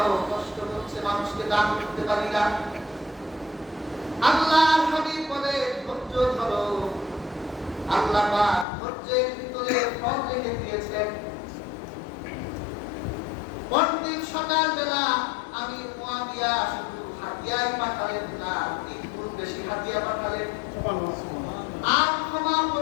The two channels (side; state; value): right; drops out; at 8.7 s